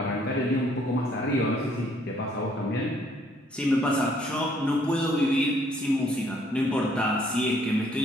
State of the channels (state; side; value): normal; both; correlation 0.65